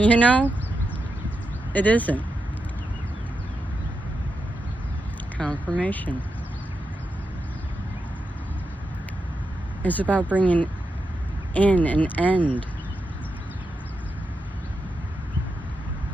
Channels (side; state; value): both; normal; correlation 0.87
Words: know? It isn't. Confirmation. It's about bringing in an end.